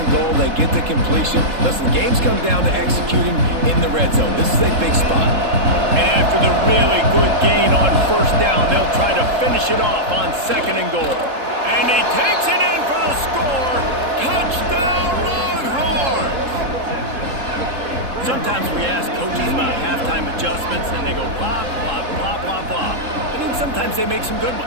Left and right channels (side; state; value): left; late; 3.7 ms